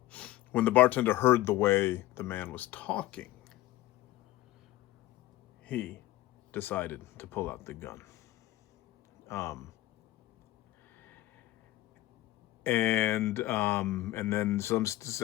the bartender heard the way the man was talking, he decided to pull out the gun. And then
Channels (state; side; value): quieter; right; 16.1 dB